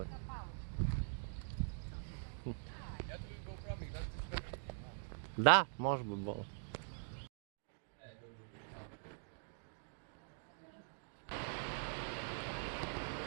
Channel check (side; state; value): left; silent; digital silence